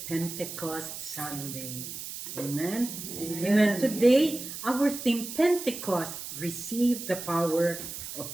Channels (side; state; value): right; noise; hiss, 9 dB below the sound